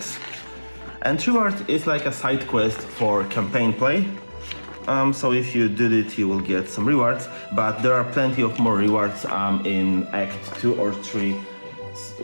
and reward is like a side quest for campaign play. So if you did it, you will get some rewards, but there are plenty of more rewards in Act 2 or 3,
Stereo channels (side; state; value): both; inverted; correlation -1.00